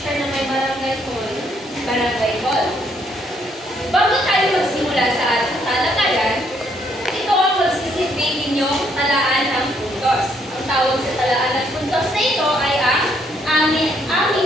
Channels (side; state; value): both; normal; correlation 0.70